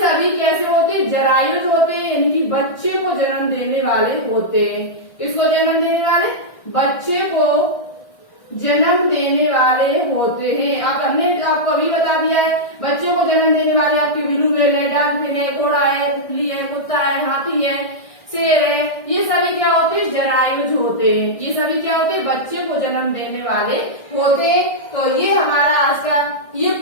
कैसे होते हैं, जरायुज होते हैं, यानी कि बच्चे को जन्म देने वाले होते हैं। किसको जन्म देने वाले, बच्चे को जन्म देने वाले होते हैं। आप हमने आपको अभी बता दिया है, बच्चों को जन्म देने वाले आपके बिल्लू है, डॉल्फिन है, घोड़ा है, तितली है, कुत्ता है, हाथी है, शेर है। ये सभी क्या होते हैं, जरायुज होते हैं। ये सभी क्या होते हैं, बच्चे को जन्म देने वाले होते हैं। तो ये हमारा आज का, ये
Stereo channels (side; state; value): right; late; 1.6 ms